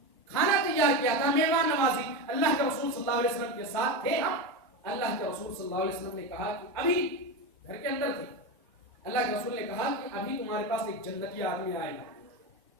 کیا تھا، مہمان نوازی. اللہ کے رسول صلی اللہ علیہ وسلم کے ساتھ تھے ہم. اللہ کے رسول صلی اللہ علیہ وسلم نے کہا کہ ابھی گھر کے اندر تھے، اللہ کے رسول نے کہا کہ ابھی تمہارے پاس ایک جنتی آدمی آئے گا.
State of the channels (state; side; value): normal; both; correlation 0.17